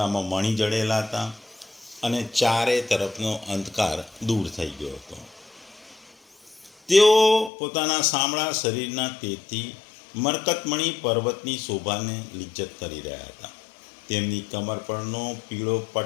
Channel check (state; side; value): drops out; right; at 7.5 s